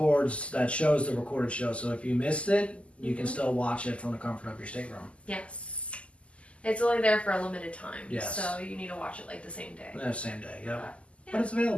shows the recorded show. So if you missed it, you can still watch it from the comfort of your stateroom. Yes. It's only there for a limited time. Yes. So you need to watch it like the same day. The same day, yep. Yeah. But it's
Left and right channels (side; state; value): right; late; 0.058 ms